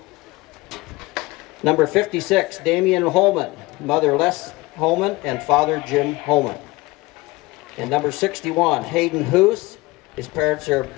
Number 56, Damian Holman. Mother Les Holman and father Jim Holman. And number 61, Hayden Hoos. His parents are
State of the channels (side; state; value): right; quieter; 21.6 dB